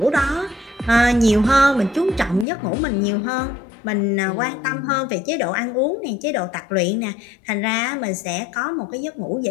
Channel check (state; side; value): drops out; right; at 2.5 s